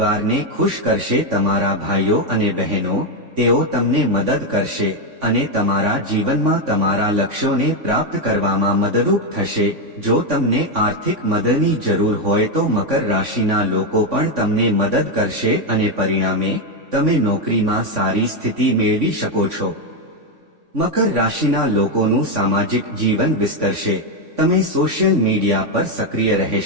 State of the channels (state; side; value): late; left; 3.5 ms